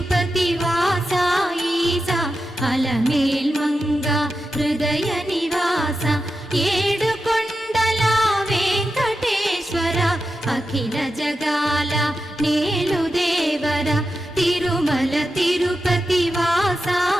వాస ఈసా అలమేల్ మంగ హృదయ నివాస ఏడు కొండల వెంకటేశ్వర అఖిల జగాల నేలు దేవర తిరుమల తిరుపతి వాస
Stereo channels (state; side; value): normal; both; correlation 0.90